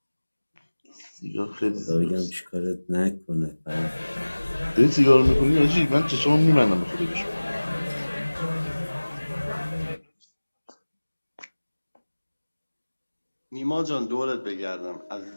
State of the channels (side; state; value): both; inverted; correlation -1.00